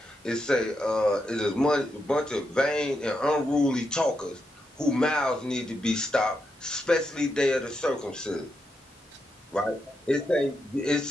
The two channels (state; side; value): normal; both; correlation 0.84